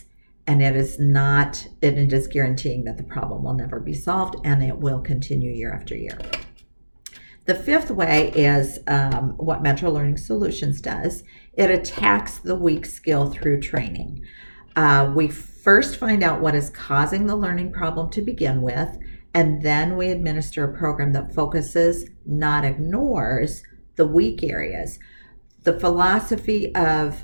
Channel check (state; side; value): inverted; both; correlation -1.00